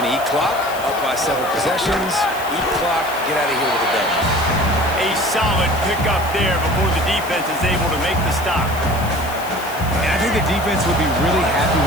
to eat clock, up by several possessions, eat clock, get out of here with a W. A solid pickup there before the defense is able to make the stop. And I think the defense would be really happy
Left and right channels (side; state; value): left; noise; hiss, 15 dB below the sound